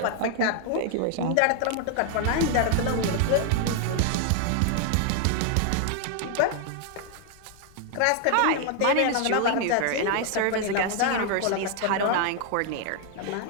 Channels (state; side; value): different; both; correlation 0.00